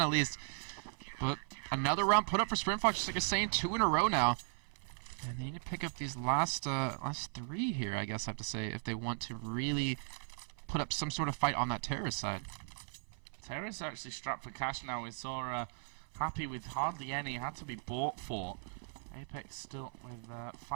at least. But another round put up for Sprintfox, just like I was saying, 2 in a row now. And they need to pick up these last 3 here, I guess I have to say, if they want to really put up some sort of fight on that terrorist side. Terrorists are actually strapped for cash now. We saw Happy with hardly any, had to be bought for. Apex still with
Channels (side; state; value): left; silent; 53 dB below the other